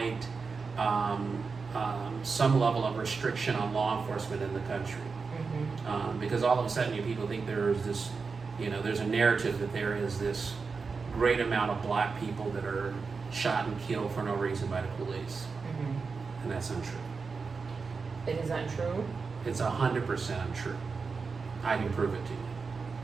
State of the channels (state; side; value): quieter; left; 4.8 dB